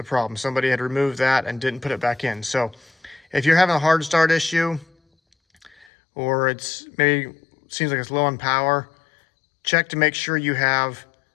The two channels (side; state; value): right; drops out; at 5.9 s